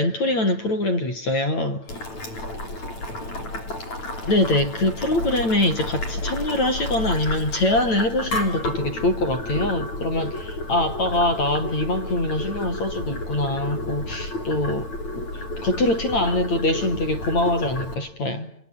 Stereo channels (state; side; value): late; right; 8.9 ms